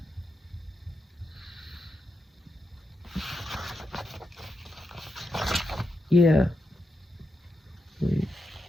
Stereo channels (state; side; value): normal; both; correlation 0.85